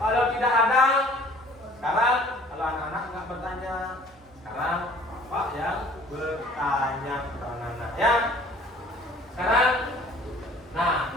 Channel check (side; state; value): both; normal; correlation 0.52